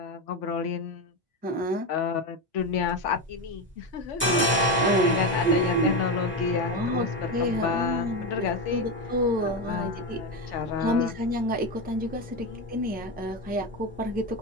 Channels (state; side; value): normal; both; correlation 0.14